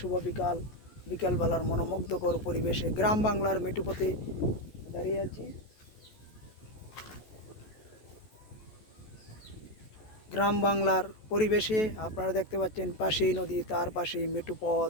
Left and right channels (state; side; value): late; right; 14 ms